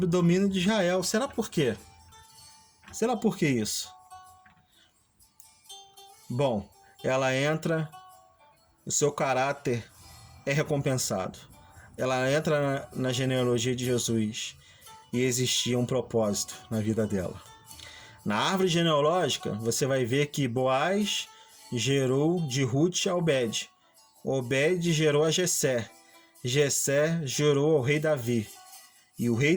o domínio de Israel. Será por quê? Será por que isso? Bom, ela entra, o seu caráter é recompensado. Ela entra na genealogia de Jesus e existia um propósito na vida dela. Na árvore genealógica, você vai ver que Boaz gerou de Ruth a Obed. Obed gerou a Jessé. Jessé gerou ao rei Davi. E o rei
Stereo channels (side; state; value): both; identical; correlation 1.00